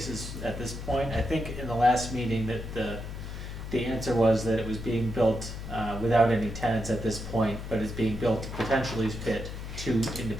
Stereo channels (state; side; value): noise; left; hum, 8 dB below the sound